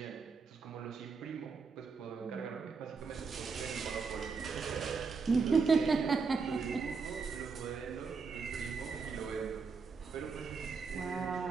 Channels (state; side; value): quieter; left; 5.0 dB